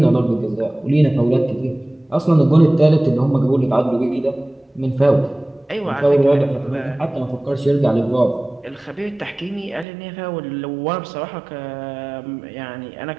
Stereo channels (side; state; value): left; drops out; at 9.9 s